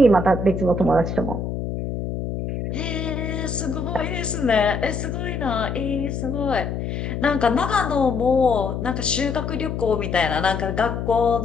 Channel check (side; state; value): left; noise; hum, 4 dB below the sound